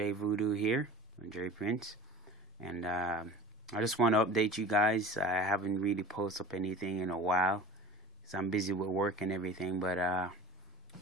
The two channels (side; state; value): both; normal; correlation 0.38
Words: Voodoo here, Jay Prince, and I just want to update you guys. I haven't really posted up anything in a while, because I'm busy with work and everything. But